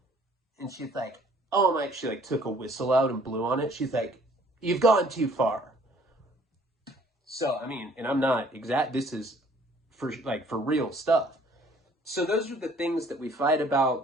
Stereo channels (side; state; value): both; normal; correlation 0.58